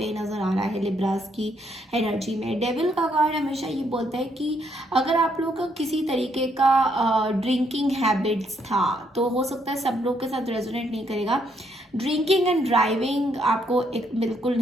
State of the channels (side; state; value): both; normal; correlation 0.73